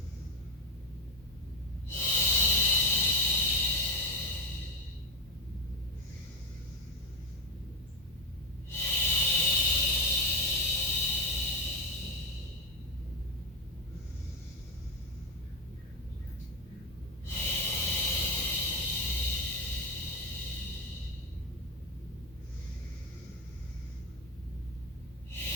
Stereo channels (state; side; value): normal; both; correlation 0.13